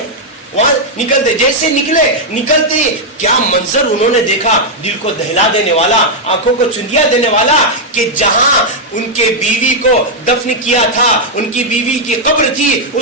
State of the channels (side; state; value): both; normal; correlation -0.02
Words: وہاں نکلتے، جیسے نکلتے کیا منظر انہوں نے دیکھا، دل کو دہلا دینے والا، آنکھوں کو چندیا دینے والا، کہ جہاں ان کے بیوی کو دفن کیا تھا، ان کی بیوی کی قبر تھی،